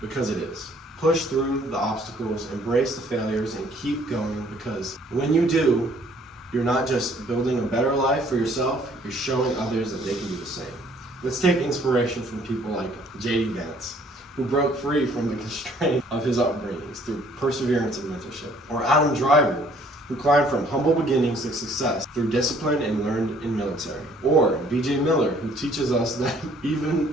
it is. Push through the obstacles, embrace the failures, and keep going, because when you do, you're not just building a better life for yourself, you're showing others that they can do the same. Let's take inspiration from people like J.D. Vance, who broke free from the constraint of his upbringings through perseverance and mentorship. Or Adam Driver, who climbed from humble beginnings to success through discipline and learned in military. Or B.J. Miller, who teaches us that even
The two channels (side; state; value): both; normal; correlation 0.60